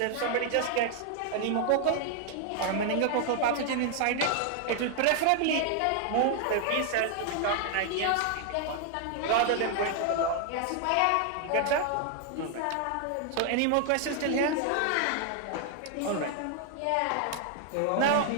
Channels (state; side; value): different; both; correlation 0.00